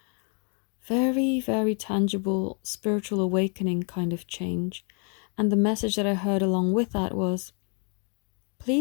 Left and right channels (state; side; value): quieter; right; 38.8 dB